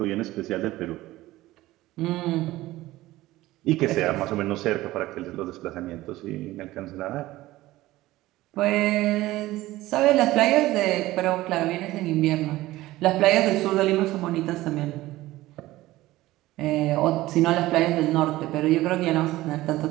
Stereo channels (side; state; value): left; quieter; 17.2 dB